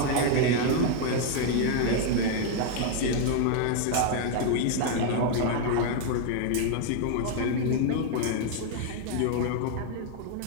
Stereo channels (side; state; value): both; different; correlation 0.00